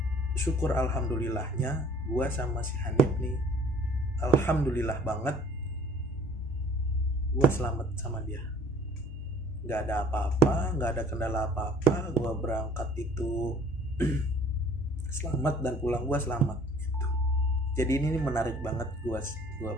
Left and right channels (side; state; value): both; normal; correlation 0.54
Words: syukur alhamdulillahnya gua sama si Hanif nih, alhamdulillah banget gua selamat sama dia. Gak ada apa-apa, gak ada kendala apa-apa. Gua berangkat itu selamat dan pulang gua selamat gitu. Jadi ini menarik banget gua